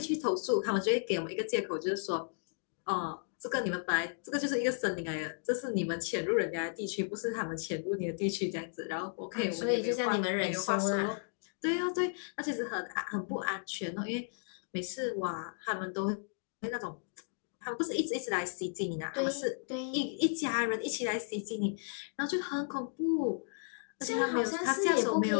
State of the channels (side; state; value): right; silent; digital silence